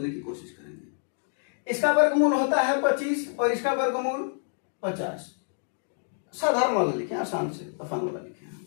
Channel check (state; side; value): silent; right; digital silence